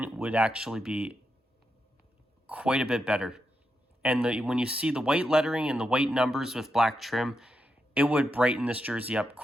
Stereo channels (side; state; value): both; normal; correlation 0.85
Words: would actually be quite a bit better. And when you see the white lettering and the white numbers with black trim, it would brighten this jersey up